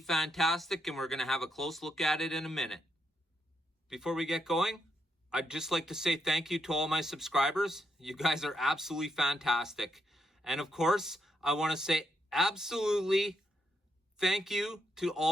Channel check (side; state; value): both; normal; correlation 0.79